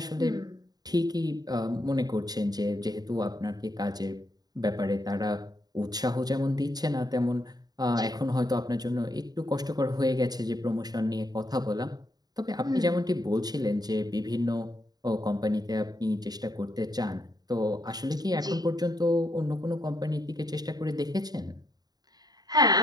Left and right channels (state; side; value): late; left; 0.19 ms